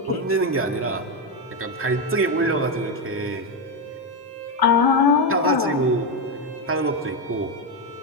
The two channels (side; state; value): both; normal; correlation 0.08